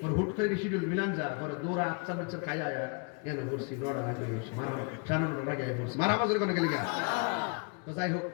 ওর হুট করে শিডিউল মিলান যা পরে দৌড়া আচ্ছা বাচ্চা খাই আয়া এনে পড়ছি নটা আগে সাড়ে 9টার আগে পড়ছি মারা বাজার কোনো গেলি গা। তো যাই হোক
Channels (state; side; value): quieter; right; 34.8 dB